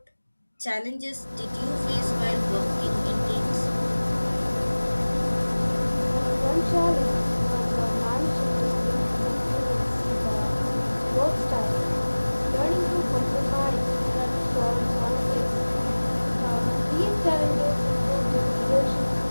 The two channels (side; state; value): both; inverted; correlation -1.00